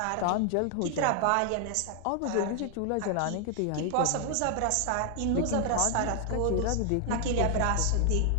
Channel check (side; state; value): both; different; correlation 0.00